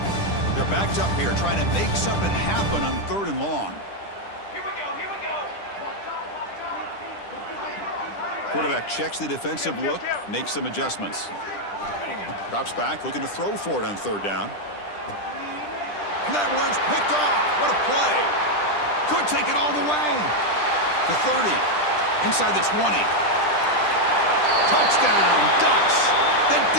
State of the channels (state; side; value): late; right; 10 ms